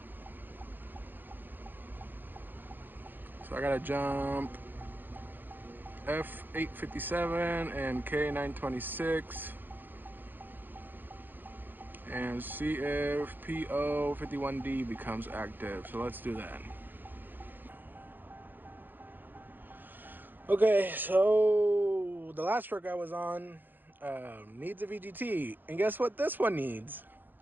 So I gotta jump F857 and K926 and see if PO51D becomes active. So let's do that. Okay, so the last truck I was on needs a VGT, and guess what this one needs?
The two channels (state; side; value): late; left; 0.091 ms